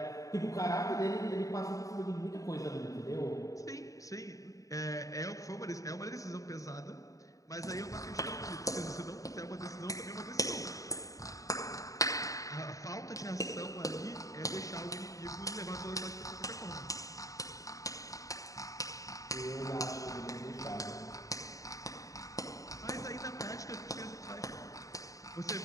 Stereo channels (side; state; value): right; late; 0.16 ms